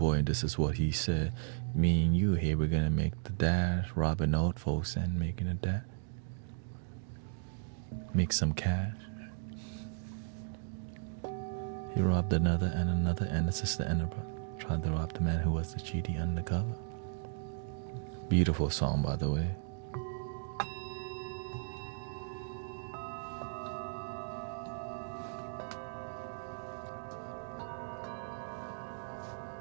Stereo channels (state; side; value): silent; left; digital silence